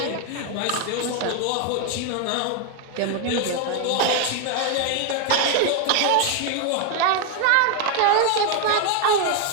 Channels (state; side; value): different; both; correlation 0.01